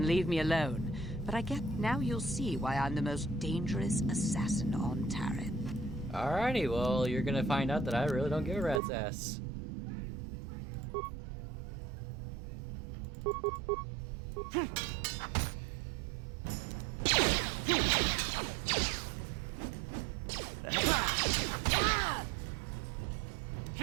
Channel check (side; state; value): left; drops out; at 8.8 s